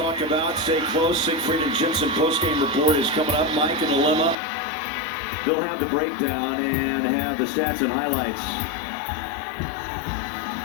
about. Stay close. Siegfried and Jensen postgame report is coming up. Mike and Dilemma. They'll have the breakdown and have the stats and highlights.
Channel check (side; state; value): right; drops out; at 4.4 s